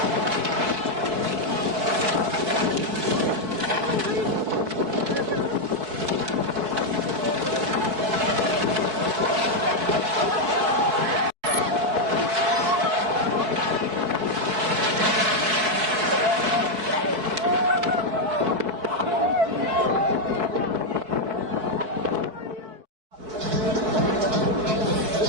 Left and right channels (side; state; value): left; late; 4.6 ms